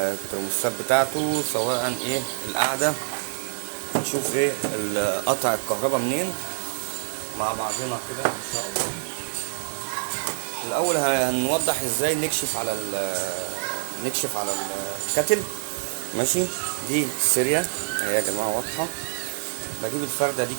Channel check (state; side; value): silent; left; digital silence